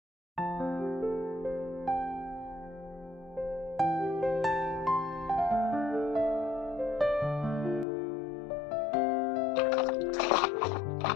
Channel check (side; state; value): right; drops out; at 7.9 s